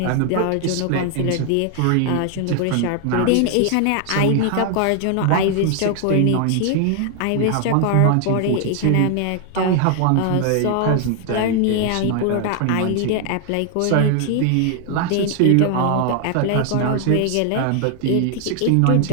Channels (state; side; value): different; both; correlation 0.00